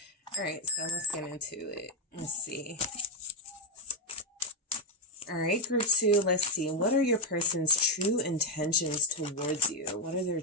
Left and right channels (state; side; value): normal; both; correlation 0.03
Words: let's get into it. Let's see. All right, group 2, let's see. What are your person's true intentions towards you? What are their